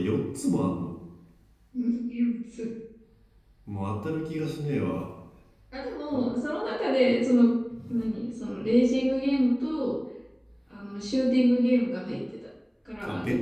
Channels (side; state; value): both; identical; correlation 1.00